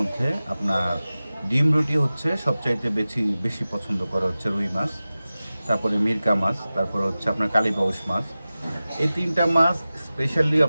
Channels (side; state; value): both; inverted; correlation -0.96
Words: আপনার ডিম রুটি হচ্ছে সবচাইতে বেশি বেশি পছন্দ করে হচ্ছে রুই মাছ, তারপরে মিরকা মাছ, তারপরে হচ্ছে আপনার কালীবাউস মাছ। এই তিনটা মাছ স্পেশালি